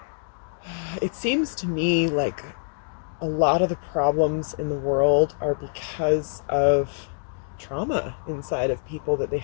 seems to me like a lot of the problems in the world are because of trauma inside of people that they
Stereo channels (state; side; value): silent; right; digital silence